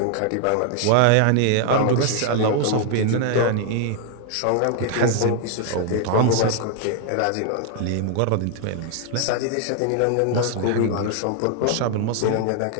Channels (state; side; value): different; both; correlation 0.00